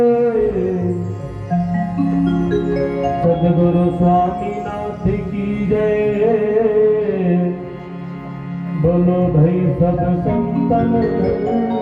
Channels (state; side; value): identical; both; correlation 1.00